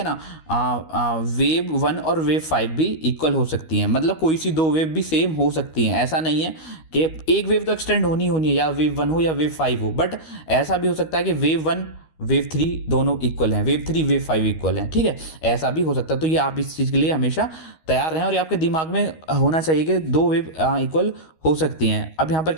ना। वेव 1 और वेव 5 भी इक्वल हो सकती हैं, मतलब कोई सी दो वेव भी सेम हो सकती हैं। ऐसा नहीं है कि एक वेव तो एक्सटेंड होनी है, या वेव 1 हो या वेव 5 हो, बट ऐसा भी हो सकता है कि वेव 1 वेव 3 दोनों इक्वल हैं, वेव 3 वेव 5 इक्वल हैं, ठीक है, ऐसा भी हो सकता है। तो ये आप इस चीज़ के लिए हमेशा तैयार रहें और ये आपके दिमाग में होना चाहिए कि दो वेव इक्वल हो सकती हैं। अब यहाँ पर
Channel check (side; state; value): right; late; 13 ms